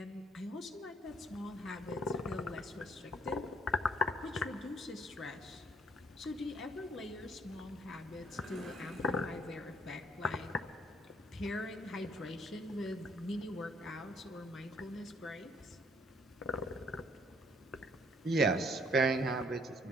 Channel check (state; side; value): normal; both; correlation 0.64